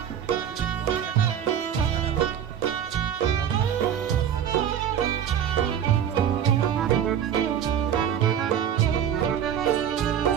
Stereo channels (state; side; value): quieter; left; 9.2 dB